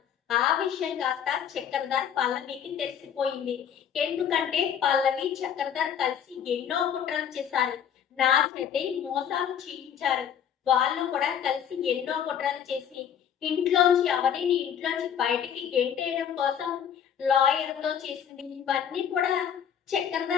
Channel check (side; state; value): right; quieter; 8.6 dB